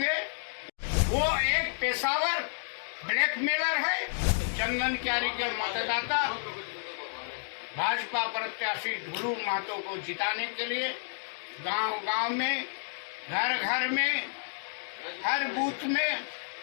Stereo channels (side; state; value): right; silent; digital silence